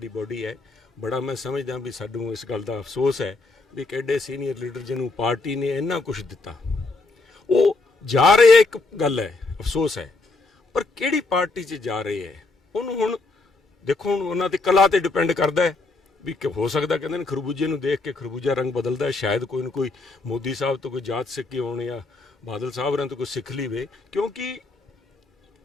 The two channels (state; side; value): quieter; right; 3.5 dB